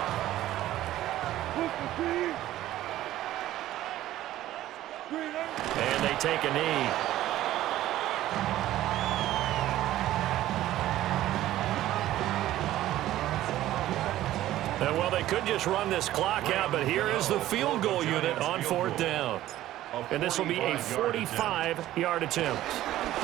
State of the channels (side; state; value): left; quieter; 14.2 dB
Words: And they take a knee. And well, they could just run this clock out, but here is the field goal unit on 4th down. And this will be a 45-yard attempt.